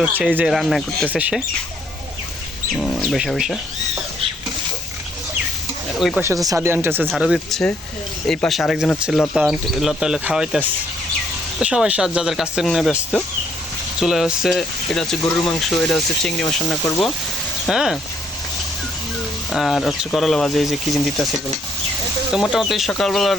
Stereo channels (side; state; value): both; normal; correlation 0.67